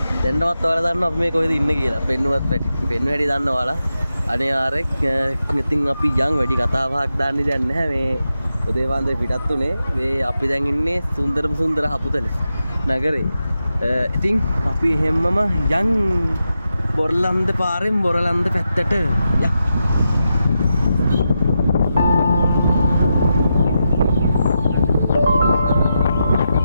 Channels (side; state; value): both; inverted; correlation -0.87